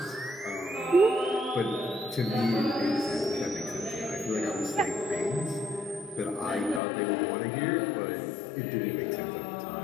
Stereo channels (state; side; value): drops out; right; at 6.8 s